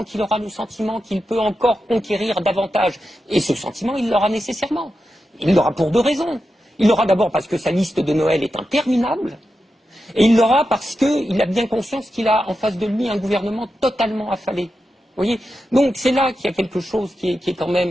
qu'il aura le sentiment qu'il peut encore conquérir davantage. Et ce sentiment, il l'aura nécessairement. Il l'aura pour deux raisons. Il l'aura d'abord parce que sa liste de Noël est interminable. Et il l'aura parce qu'il a bien conscience qu'il a en face de lui un gouvernement totalement affalé. Vous voyez? Donc c'est là qu'il y a quelque chose qui est quand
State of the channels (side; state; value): both; normal; correlation 0.89